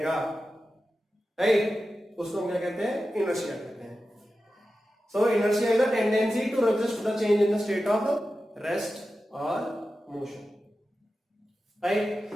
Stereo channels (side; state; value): both; normal; correlation 0.92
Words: राइट? उसको हम क्या कहते हैं? इनर्शिया कहते हैं। So inertia is a tendency to resist the change in the state of rest or motion, right?